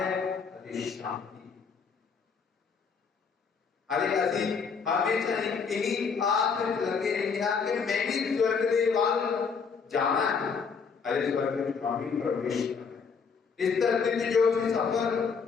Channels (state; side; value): quieter; right; 5.7 dB